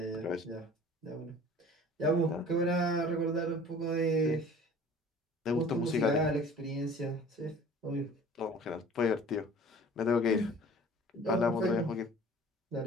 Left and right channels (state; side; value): normal; both; correlation 0.46